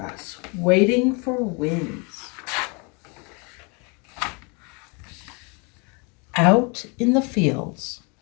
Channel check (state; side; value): quieter; right; 32.1 dB